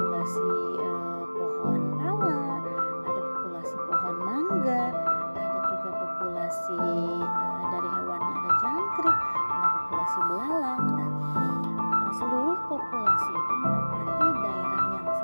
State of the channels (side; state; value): both; inverted; correlation -1.00